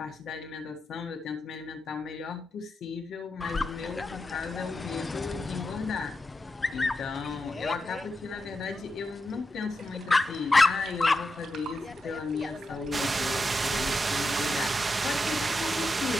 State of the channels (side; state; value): both; normal; correlation 0.87